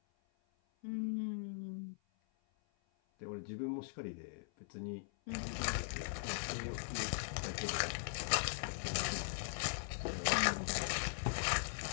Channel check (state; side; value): silent; right; 51 dB below the other